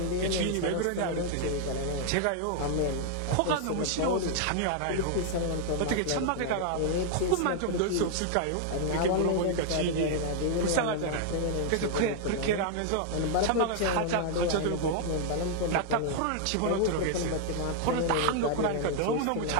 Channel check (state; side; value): different; both; correlation 0.00